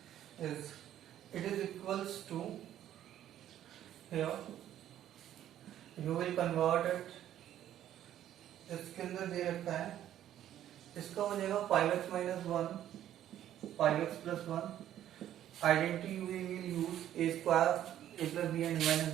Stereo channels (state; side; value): quieter; left; 11.6 dB